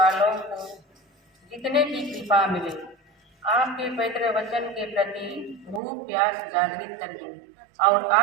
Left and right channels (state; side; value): drops out; left; at 5.8 s